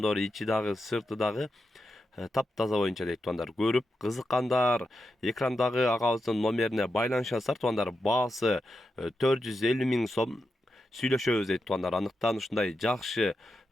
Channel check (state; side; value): normal; both; correlation 0.88